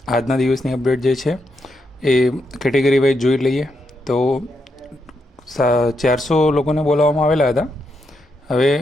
આજના દિવસની અપડેટ જે છે એ કેટેગરી વાઇઝ જોઈ લઈએ. તો 400 લોકોને બોલાવવામાં આવેલા હતા. હવે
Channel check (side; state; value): both; normal; correlation 0.82